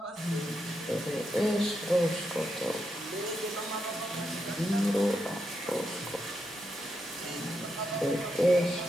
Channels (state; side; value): normal; both; correlation 0.83